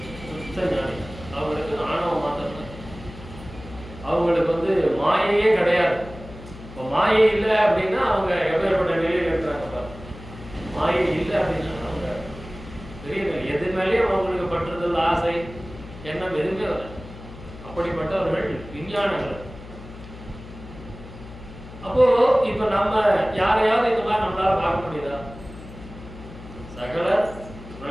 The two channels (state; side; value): noise; left; hum, 15 dB below the sound